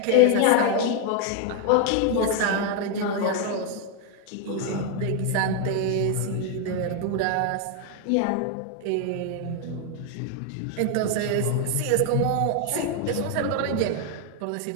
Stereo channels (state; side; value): different; both; correlation 0.00